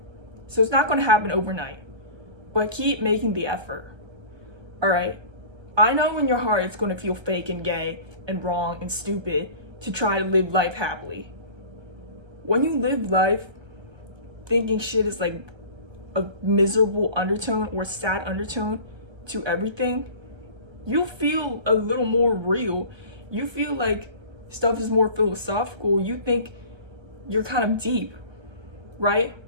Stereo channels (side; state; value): left; late; 1.3 ms